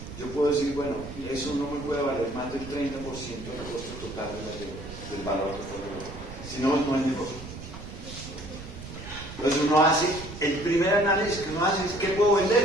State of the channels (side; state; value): right; noise; rumble, 12 dB below the sound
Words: yo puedo decir, bueno, eso no me puede valer más del 30% del costo total del valor que fue el valor. Si no, no es negocio. Entonces uno hace, el primer análisis que uno hace es ¿qué puedo